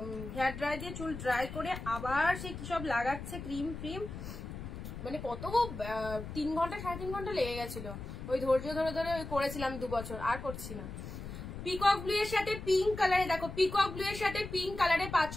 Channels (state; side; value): noise; left; rumble, 9 dB below the sound